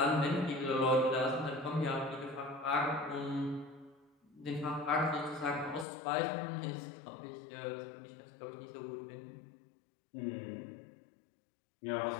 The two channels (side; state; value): right; drops out; at 5.9 s